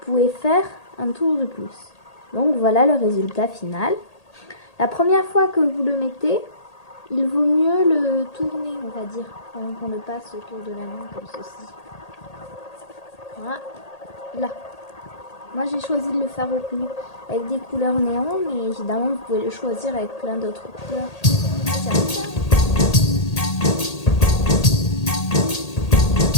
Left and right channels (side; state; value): right; late; 1.8 ms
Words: faire un tour de plus. Donc voilà le résultat final. La première fois que vous le mettez, il vaut mieux le tourner, on va dire, avant qu'on le passe autour de la main comme ceci. Voilà. Là. Moi j'ai choisi de le faire avec des couleurs néon, mais évidemment vous pouvez le choisir avec plein d'autres couleurs.